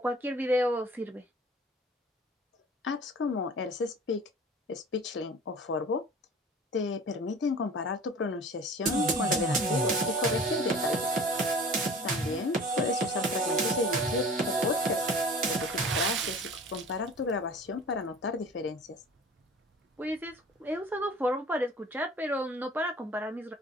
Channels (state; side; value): normal; both; correlation 0.44